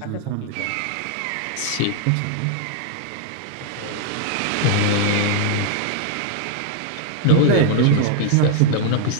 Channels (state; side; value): different; both; correlation -0.01